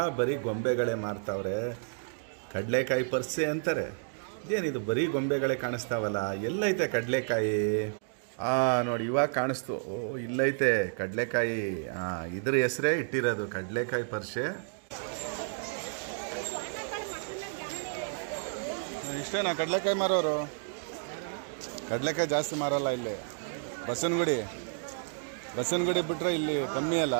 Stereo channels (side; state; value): left; silent; digital silence